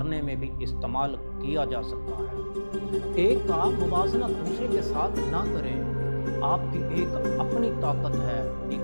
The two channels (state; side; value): inverted; both; correlation -1.00